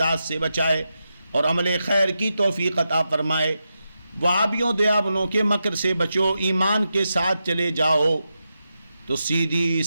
سے بچائے اور عمل خیر کی توفیق عطا فرمائے. وہابیوں دیابنوں کے مکر سے بچو، ایمان کے ساتھ چلے جاؤ تو سیدھی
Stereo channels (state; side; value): inverted; both; correlation -0.88